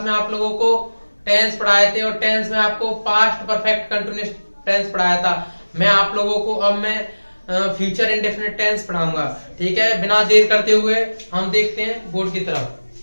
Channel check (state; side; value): inverted; both; correlation -1.00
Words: में आप लोगों को टेंस पढ़ाए थे और टेंस में आपको पास्ट परफेक्ट कंटिन्यूअस टेंस पढ़ाया था। मैं आप लोगों को अब मैं फ्यूचर इंडेफिनिट टेंस पढ़ाऊंगा। ठीक है, बिना देर करते हुए हम देखते हैं बोर्ड की तरफ।